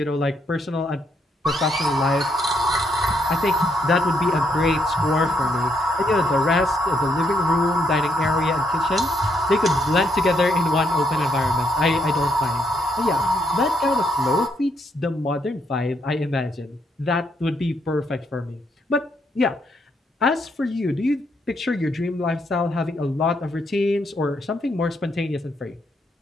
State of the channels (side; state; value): both; normal; correlation 0.75